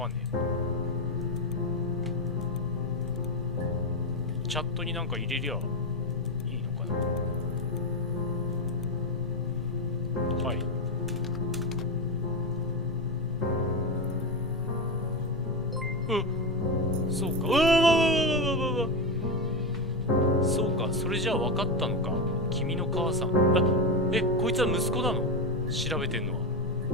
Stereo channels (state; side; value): normal; both; correlation 0.13